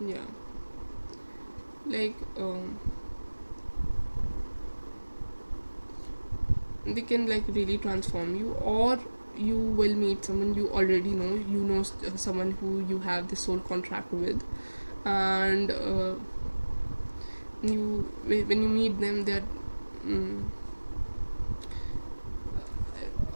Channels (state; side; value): inverted; both; correlation -1.00